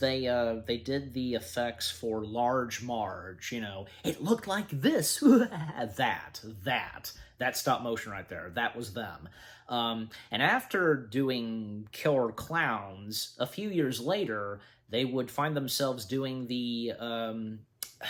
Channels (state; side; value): identical; both; correlation 1.00